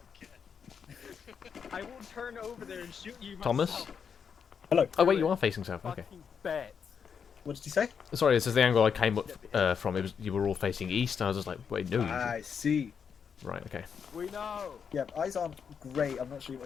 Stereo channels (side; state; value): right; quieter; 6.8 dB